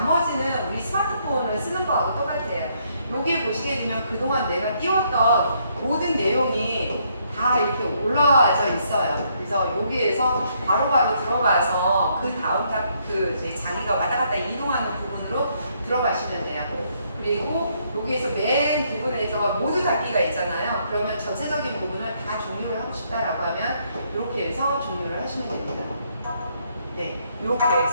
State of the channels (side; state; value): both; inverted; correlation -0.72